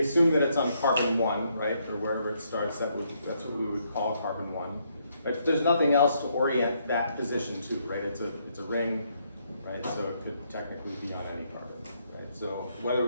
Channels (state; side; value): inverted; both; correlation -0.73